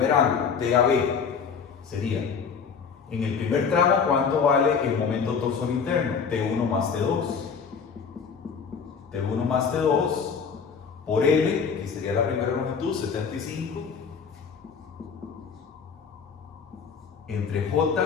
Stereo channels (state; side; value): quieter; right; 6.1 dB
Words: T a B. Sería, en el primer tramo, ¿cuánto vale el momento torsor interno? T1 más T2. T1 más T2 por L, que sería la primera longitud, 75, entre J,